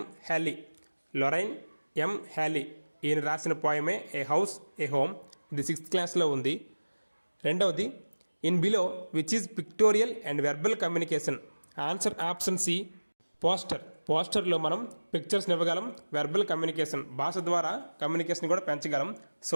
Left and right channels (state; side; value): inverted; both; correlation -1.00